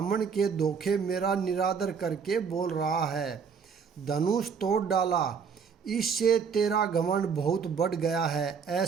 के धोखे मेरा निरादर करके बोल रहा है। धनुष तोड़ डाला, इससे तेरा घमंड बहुत बढ़ गया है।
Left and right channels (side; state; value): left; quieter; 6.2 dB